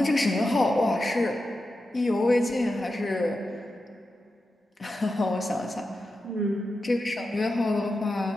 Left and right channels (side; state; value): both; normal; correlation 0.90